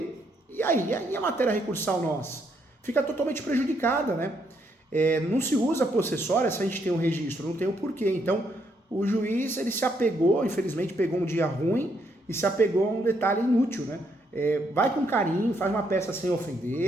e aí a matéria recursal nossa fica totalmente prejudicada, né? Não se usa possessória se a gente tem um registro, não tem o porquê. Então, o juiz, ele se apegou, infelizmente pegou um dia ruim e se apegou a um detalhe inútil, né? Vai com carinho, faz uma peça sem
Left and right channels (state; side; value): normal; both; correlation 0.74